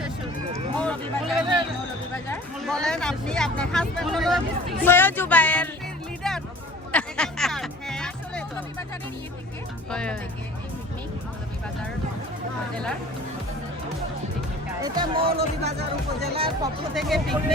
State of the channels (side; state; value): both; normal; correlation 0.45